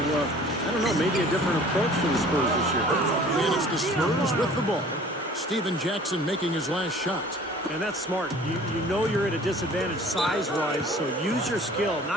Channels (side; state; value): both; normal; correlation 0.49